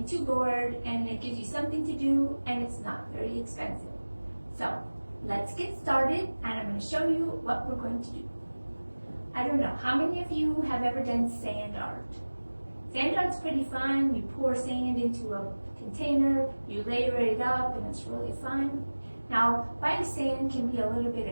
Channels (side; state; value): both; inverted; correlation -1.00